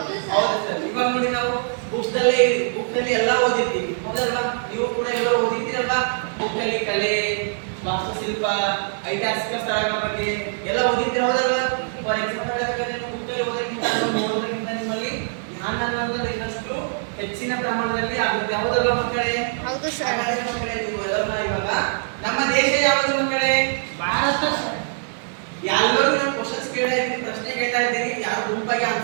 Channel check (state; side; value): silent; left; 63 dB below the other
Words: ಹೌದು ಸರ್. ಇವಾಗ ನೋಡಿ ನಾವು ಬುಕ್ಸ್ ಅಲ್ಲಿ ಎಲ್ಲ ಓದಿರ್ತೀವಿ, ಹೌದಲ್ವಾ? ನೀವು ಕೂಡ ಎಲ್ಲರೂ ಓದಿರ್ತೀರಲ್ವಾ? ಬುಕ್ ಅಲ್ಲಿ ಕಲೆ, ವಾಸ್ತುಶಿಲ್ಪ, ಐತಿಹಾಸಿಕ ಸ್ಥಳಗಳ ಬಗ್ಗೆ ಎಲ್ಲ ಓದಿರ್ತೀರ, ಹೌದಲ್ವಾ? ಫಾರ್ ಎಕ್ಸಾಂಪಲ್ ನೀವು ಬುಕ್ ಅಲ್ಲಿ ಓದೋಕ್ಕಿಂತ ಓದೋದ್ರಿಂದ ನಿಮ್ಮಲ್ಲಿ ಜ್ಞಾನ ಅನ್ನೋದು ಇನ್ನಷ್ಟು ಹೆಚ್ಚಿನ ಪ್ರಮಾಣದಲ್ಲಿ ಆಗುತ್ತೆ, ಹೌದಲ್ವಾ ಮಕ್ಕಳೇ? ಹೌದು ಸರ್. ಹಾಗಾದ್ರೆ ಮಕ್ಕಳೇ ನೀವು ಎಲ್ಲರೂ ಇವಾಗ ನಮ್ಮ ದೇಶ ಯಾವುದು ಮಕ್ಕಳೇ? ಭಾರತ. ಎಲ್ಲರೂ ನಾನು ಕ್ವಶನ್ಸ್ ಕೇಳ್ತಾ ಇದ್ದೀನಿ, ಪ್ರಶ್ನೆ ಕೇಳ್ತಾ ಇದ್ದೀನಿ, ಯಾರು ಗುಂಪಾಗಿ